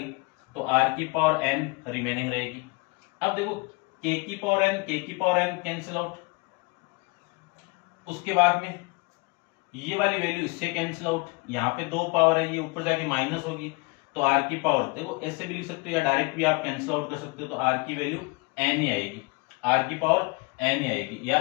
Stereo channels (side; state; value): right; quieter; 28.8 dB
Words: तो r की पावर n रिमेनिंग रहेगी। अब देखो k की पावर n कैंसिल आउट, उसके बाद में ये वाली वैल्यू इससे कैंसिल आउट, यहाँ पे 2 पावर है, ये ऊपर जाके माइनस होगी तो r की पावर, देखो ऐसे भी लिख सकते हो या डायरेक्ट भी आप कैंसिल आउट कर सकते हो तो r की वैल्यू n ही आएगी, r की पावर n ही आएगी।